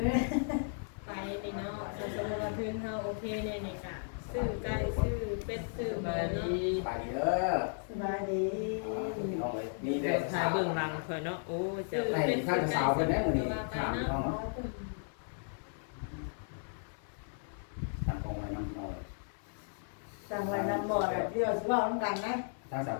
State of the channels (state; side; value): silent; right; 55 dB below the other